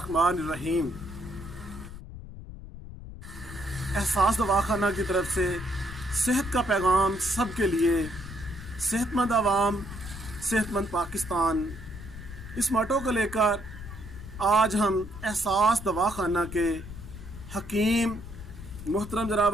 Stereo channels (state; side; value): noise; left; rumble, 12 dB below the sound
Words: एहसास दवाखाना की तरफ से सेहत का पैगाम सबके लिए, सेहतमंद आवाम सेहतमंद पाकिस्तान, इस मोटो को लेकर आज हम एहसास दवाखाना के हकीम मोहतरम